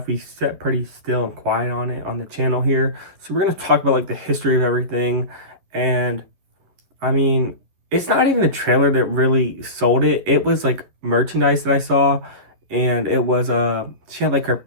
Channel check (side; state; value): left; late; 11 ms